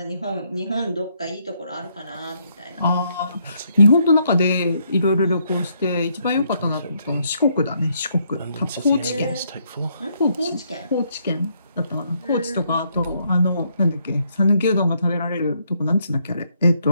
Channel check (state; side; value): inverted; both; correlation -0.73